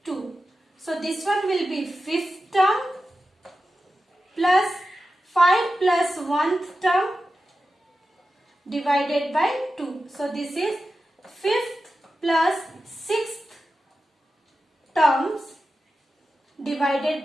2. So this one will be 5th term plus 5 plus 1th term divided by 2. So this is 5th plus 6th terms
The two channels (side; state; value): both; normal; correlation 0.92